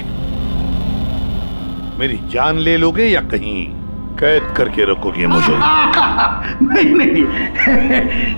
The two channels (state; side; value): inverted; both; correlation -1.00